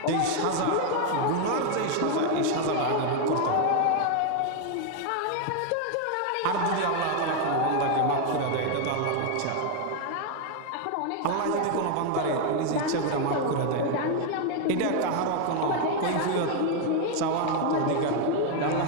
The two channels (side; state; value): both; different; correlation 0.01